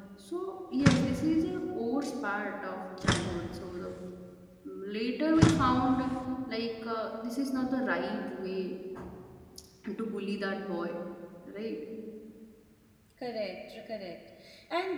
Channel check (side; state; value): both; identical; correlation 1.00